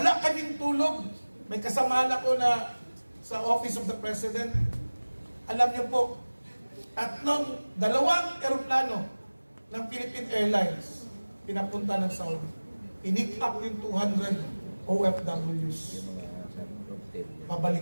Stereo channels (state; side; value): inverted; both; correlation -1.00